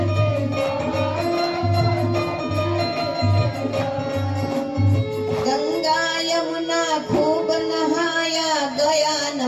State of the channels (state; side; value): identical; both; correlation 1.00